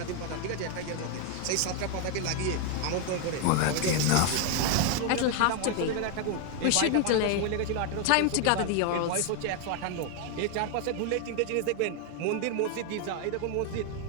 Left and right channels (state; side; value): different; both; correlation 0.01